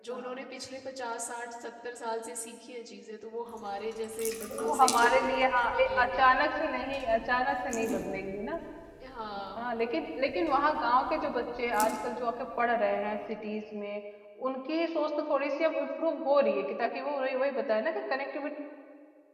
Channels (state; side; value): identical; both; correlation 1.00